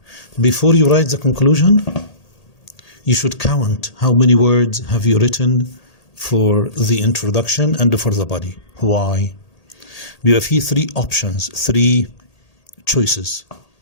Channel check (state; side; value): late; right; 1.8 ms